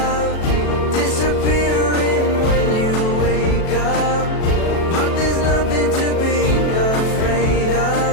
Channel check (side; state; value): right; late; 37 ms